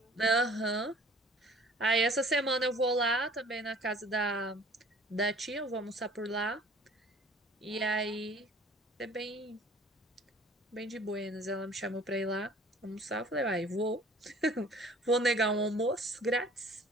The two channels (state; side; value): normal; both; correlation 0.51